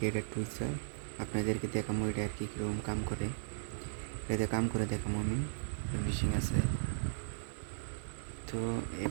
এটা টুইচার আপনাদেরকে দেখাবো এটা আর কি কীরকম কাম করে এটাতে কাম করে দেখাবো আমি মেশিন আছে তো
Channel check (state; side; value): silent; left; digital silence